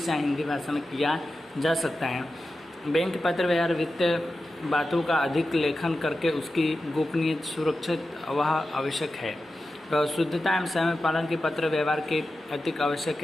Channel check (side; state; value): both; normal; correlation 0.92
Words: या हिंदी भाषा में किया जा सकता है। बैंक पत्र व्यवहार वित्तीय बातों का अधिक लेखन करके उसकी गोपनीयता सुरक्षित वह आवश्यक है। शुद्धता एवं समय पालन के पत्र व्यवहार के अधिक आवश्यक